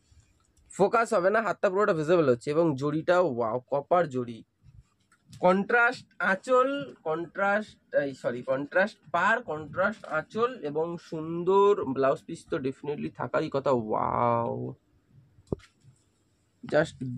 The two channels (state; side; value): identical; both; correlation 1.00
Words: ফোকাস হবে না, হাতটা পুরোটা ভিজিবল হচ্ছে। এবং জড়িটাও ওয়াও, কপার জড়ি, কন্ট্রাস্ট আঁচল, কন্ট্রাস্ট পার, কন্ট্রাস্ট আঁচল এবং সুন্দর ব্লাউজ পিস তো ডেফিনেটলি থাকারই কথা। ওয়াও, জাস্ট